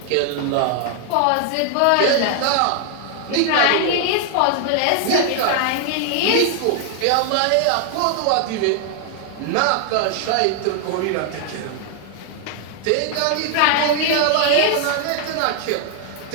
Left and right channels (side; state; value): both; different; correlation 0.00